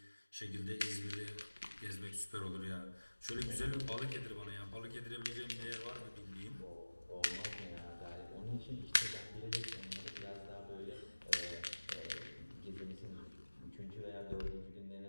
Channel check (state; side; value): inverted; both; correlation -1.00